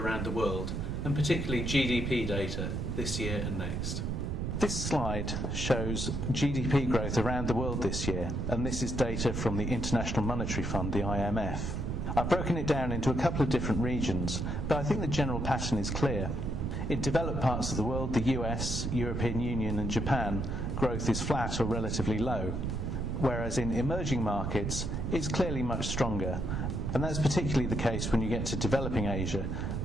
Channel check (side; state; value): right; noise; rumble, 1 dB below the sound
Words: around the world, and particularly GDP data this year and next. This slide shows GDP growth around the world this year, and this is data from the International Monetary Fund, the IMF. I've broken it down into a couple of different regions, but I think the general pattern is clear. In developed parts of the world, the US, European Union and Japan, growth is flat or relatively low, whereas in emerging markets it's clearly much stronger, and that's particularly the case when you get to developing Asia,